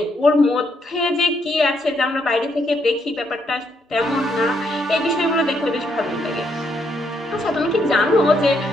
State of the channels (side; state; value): both; normal; correlation 0.75